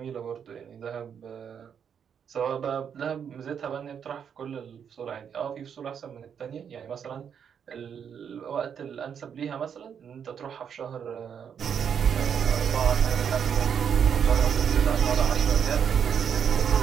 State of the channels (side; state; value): left; quieter; 7.7 dB